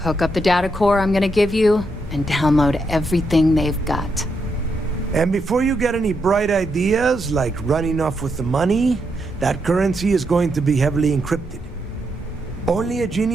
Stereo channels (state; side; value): normal; both; correlation 0.81